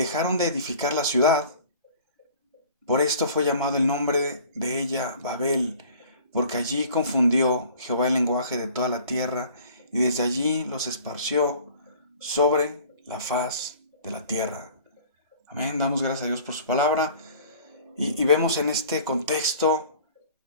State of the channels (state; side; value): inverted; both; correlation -0.48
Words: de edificar la ciudad. Por esto fue llamado el nombre de ella Babel, porque allí confundió Jehová el lenguaje de toda la tierra, y desde allí los esparció sobre la faz de la tierra. Amén, damos gracias a Dios por su palabra, y vemos en este contexto